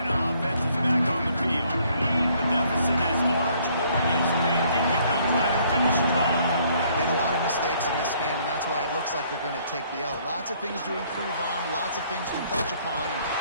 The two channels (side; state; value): both; inverted; correlation -0.64